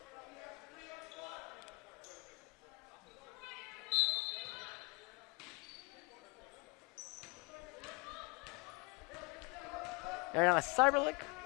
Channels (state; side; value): quieter; right; 28.4 dB